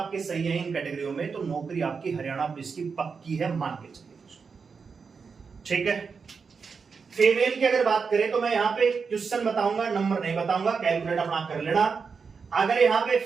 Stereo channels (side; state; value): left; quieter; 5.4 dB